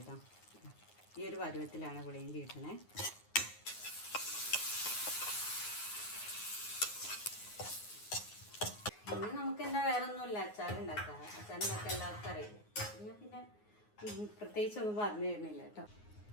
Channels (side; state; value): right; late; 9.6 ms